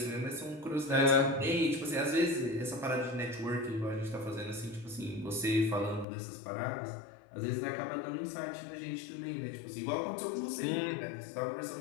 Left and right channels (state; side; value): drops out; right; at 6.1 s